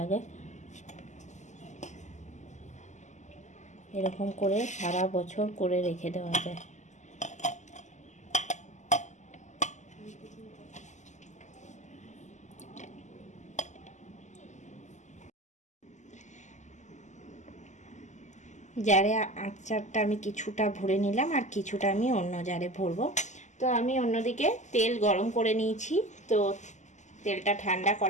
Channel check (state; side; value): late; right; 0.34 ms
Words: এরকম করে সারা বছর করে রেখে দেওয়া যায়। জারে আচারটা আমি কিছুটা ভরে নিলাম আর কিছুটা আমি অন্য জারে ভরবো। তো আমি অন্যদিকে তেল গরম করে নিয়েছি। তো তেলটা ঠান্ডা